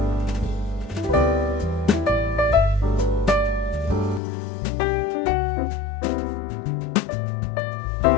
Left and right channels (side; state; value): right; drops out; at 4.2 s